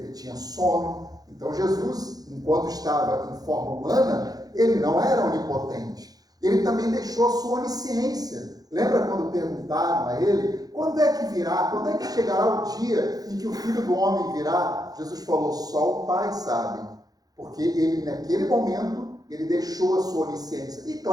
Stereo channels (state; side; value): late; left; 0.18 ms